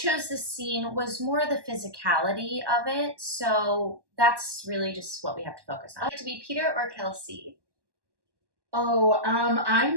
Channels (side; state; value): left; late; 1.1 ms